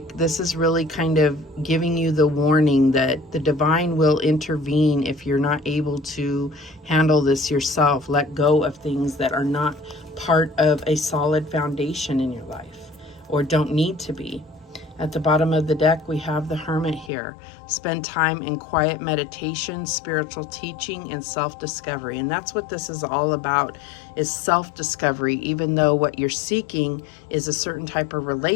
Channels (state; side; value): drops out; right; at 17.1 s